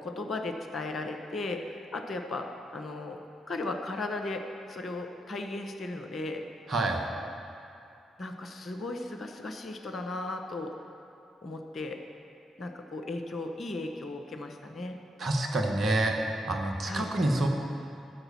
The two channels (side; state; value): both; normal; correlation 0.79